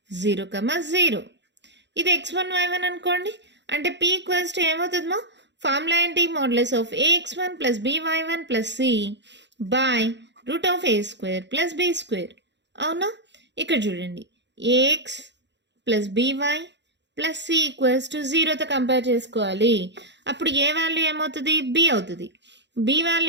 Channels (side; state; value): left; late; 0.51 ms